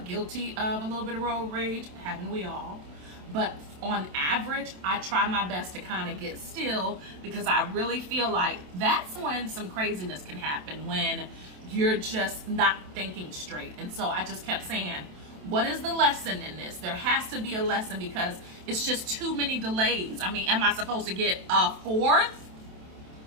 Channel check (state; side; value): late; left; 27 ms